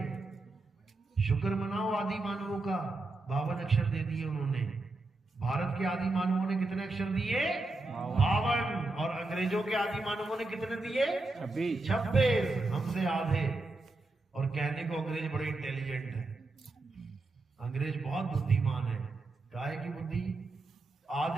शुक्र मनाओ आदि मानवों का, 52 अक्षर दे दिए उन्होंने। भारत के आदि मानवों ने कितने अक्षर दिए? 52। और अंग्रेजों के आदि मानवों ने कितने दिए? 26। हमसे आधे। और कहने को अंग्रेज बड़े इंटेलिजेंट है, अंग्रेज बहुत बुद्धिमान है। काहे की बुद्धि?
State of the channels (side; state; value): left; quieter; 3.1 dB